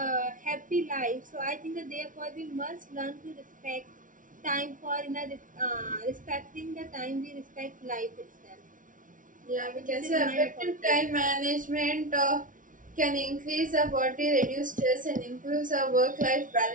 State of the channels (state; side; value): late; left; 0.38 ms